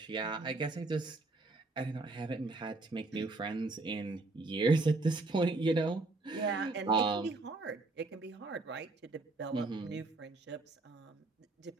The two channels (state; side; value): quieter; left; 3.2 dB